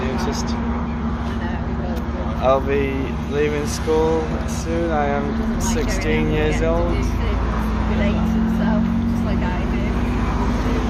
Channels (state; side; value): identical; both; correlation 1.00